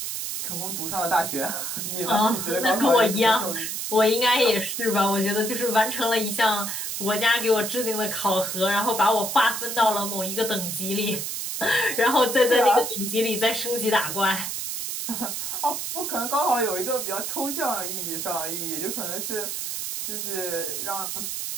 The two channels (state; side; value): noise; right; hiss, 4 dB below the sound